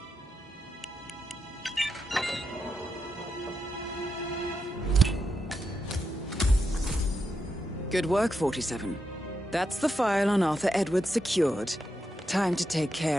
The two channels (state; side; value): normal; both; correlation 0.85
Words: Good work, 47. That's the file on Arthur Edwards secured. Time to take